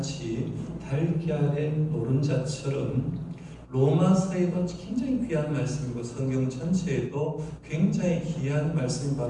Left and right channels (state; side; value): identical; both; correlation 1.00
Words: 달걀의 노른자처럼 로마서에도 굉장히 귀한 말씀이고 성경 전체에도 굉장히 귀한 말씀이